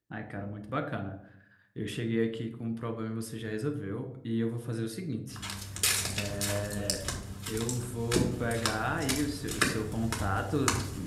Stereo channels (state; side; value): identical; both; correlation 1.00